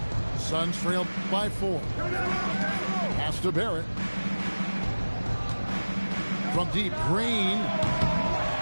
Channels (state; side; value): inverted; both; correlation -1.00